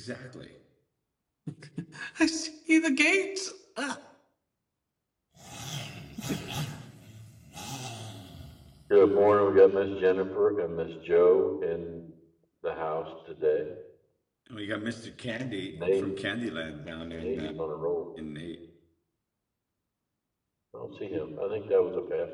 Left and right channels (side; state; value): both; identical; correlation 1.00